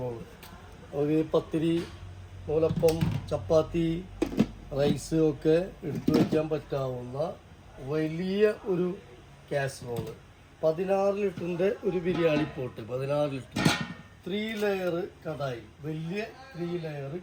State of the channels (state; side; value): identical; both; correlation 1.00